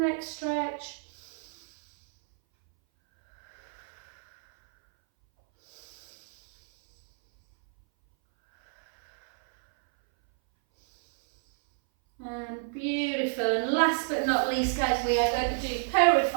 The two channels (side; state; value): left; silent; 59 dB below the other